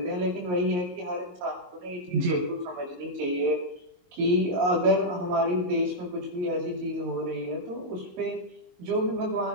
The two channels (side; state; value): left; late; 22 ms